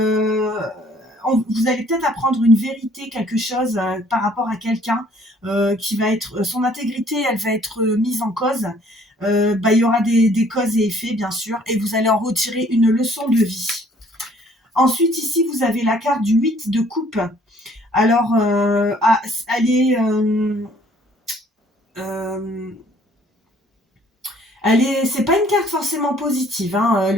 allez peut-être apprendre une vérité, quelque chose par rapport à quelqu'un qui va être, son intégrité, elle va être mise en cause. Il y aura des causes et effets, bien sûr, et vous allez en retirer une leçon de vie. Ensuite, ici, vous avez la carte du 8 de coupe. Alors, elle est... c'est pas une carte forcément positive, hein,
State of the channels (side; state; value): both; normal; correlation 0.59